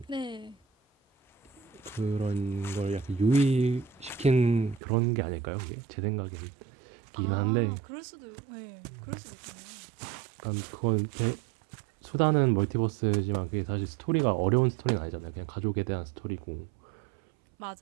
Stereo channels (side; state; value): left; drops out; at 4.8 s